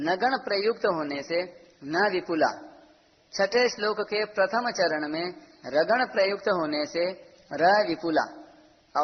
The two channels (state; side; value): identical; both; correlation 1.00